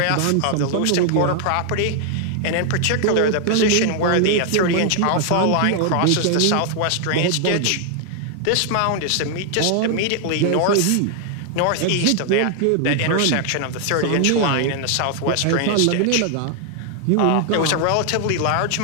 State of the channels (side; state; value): both; different; correlation 0.00